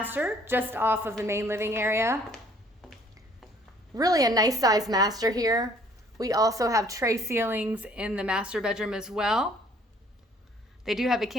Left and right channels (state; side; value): normal; both; correlation 0.59